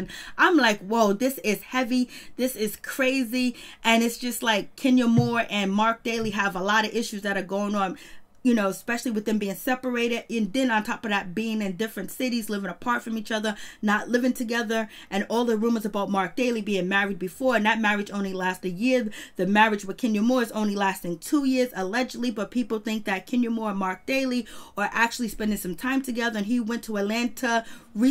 I'm like, whoa, this is heavy. This is crazy. And it's just like Kenya Moore and Mark Daly have a lot of issues that are going on, you know, especially with them being separated. And then on top of that, being in different cities, living apart from each other, not living together. And all the rumors about Mark Daly being married before. And that marriage only lasted a year. The marriage with Kenya Moore is only lasting 2 years, allegedly. But people think that Kenya Moore and Mark Daly are actually spending some time together. And he went to Atlanta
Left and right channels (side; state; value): both; identical; correlation 1.00